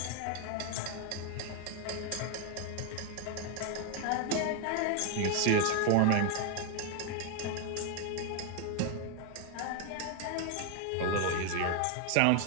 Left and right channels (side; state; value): both; different; correlation 0.01